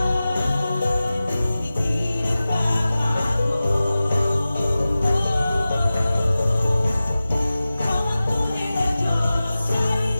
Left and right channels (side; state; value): both; inverted; correlation -0.96